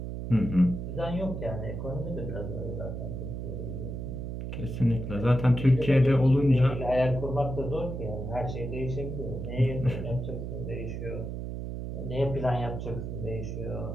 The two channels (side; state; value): right; noise; hum, 5 dB below the sound